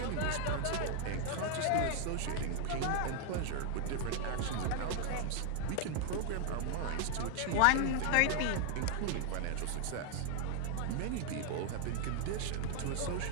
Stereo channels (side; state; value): both; different; correlation 0.00